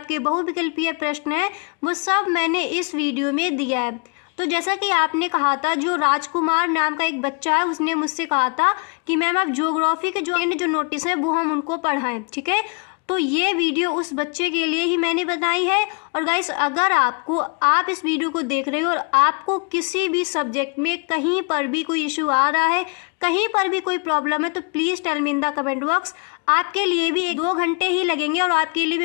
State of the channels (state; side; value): quieter; right; 35.5 dB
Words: बहुविकल्पीय प्रश्न है, वो सब मैंने इस वीडियो में दिया है। तो जैसा कि आपने कहा था, जो राजकुमार नाम का एक बच्चा है, उसने मुझसे कहा था कि मैम आप ज्योग्राफी के जो नोटिस है वो हम उनको पढ़ाएं, ठीक है। तो ये वीडियो उस बच्चे के लिए ही मैंने बनाई है। और गाइस, अगर आप इस वीडियो को देख रहे हो और आपको किसी भी सब्जेक्ट में कहीं पर भी कोई इशू आ रहा है, कहीं पर भी कोई प्रॉब्लम है, तो please tell me in the comment box. आपके लिए भी 1-2 घंटे ही लगेंगे और आपके लिए